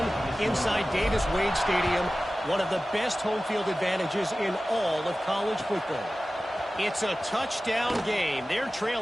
inside Davis-Wade Stadium, one of the best home field advantages in all of college football. It's a touchdown game. They're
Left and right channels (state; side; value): normal; both; correlation 0.96